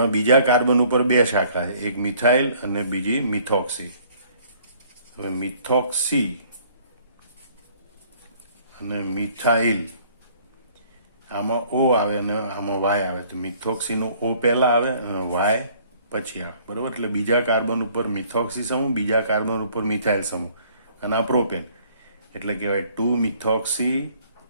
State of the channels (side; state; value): both; inverted; correlation -0.59